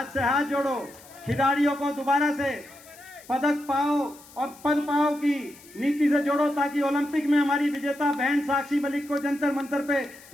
से हाथ जोड़ो, खिलाड़ियों को दोबारा से पदक पाओ और पद पाओ की नीति से जोड़ो, ताकि ओलंपिक में हमारी विजेता बहन साक्षी मलिक को जंतर मंतर पे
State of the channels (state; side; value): noise; left; hiss, 22 dB below the sound